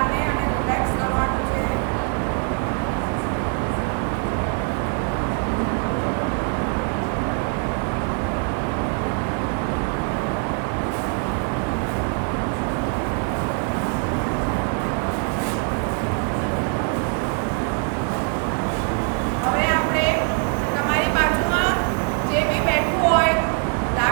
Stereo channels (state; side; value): quieter; left; 39.3 dB